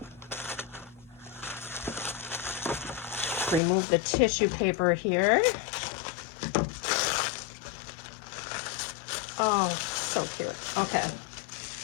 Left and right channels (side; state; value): right; drops out; at 3.6 s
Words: Remove the tissue paper here. Oh, so cute. Okay.